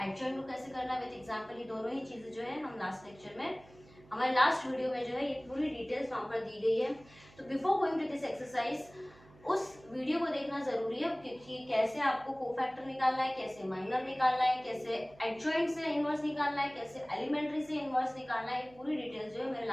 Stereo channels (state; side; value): noise; right; hum, 25 dB below the sound